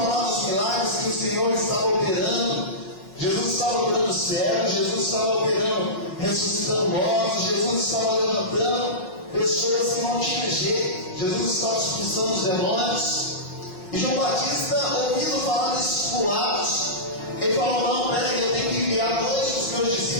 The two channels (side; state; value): right; late; 5.4 ms